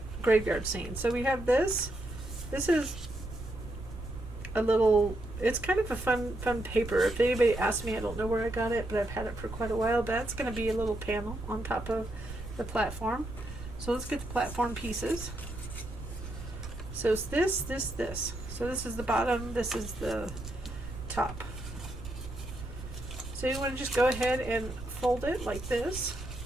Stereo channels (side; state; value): right; noise; rumble, 10 dB below the sound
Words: graveyard scene. So we have this. This is a little, it's kind of a fun paper. If anybody asks me, I don't know where I got it, but I've had it for quite a while. But that's going to be a little panel on top of the platform. So let's get the platform pieces. So it's this. So this is the bottom, this is the top. So you want to just go ahead and fold it like this.